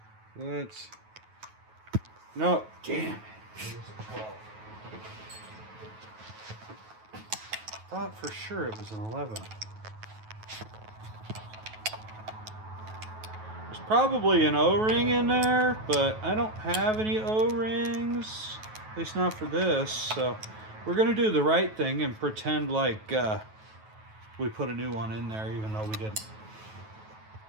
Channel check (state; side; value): late; left; 9.3 ms